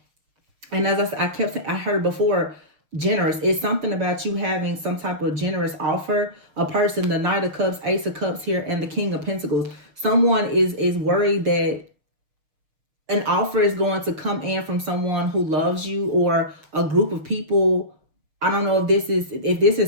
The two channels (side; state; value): left; late; 6.7 ms